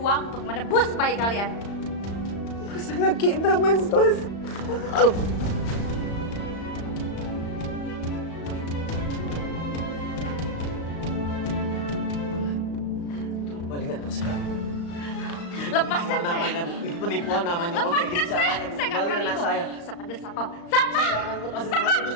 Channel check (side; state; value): right; late; 35 ms